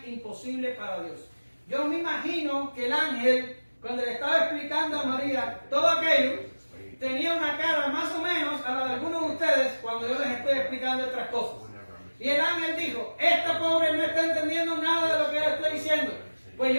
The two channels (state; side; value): inverted; both; correlation -1.00